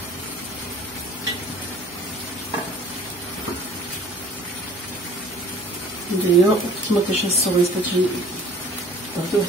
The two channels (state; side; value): normal; both; correlation 0.49